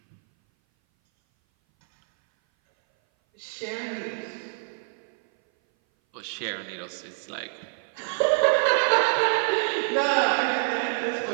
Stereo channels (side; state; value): left; silent; 58 dB below the other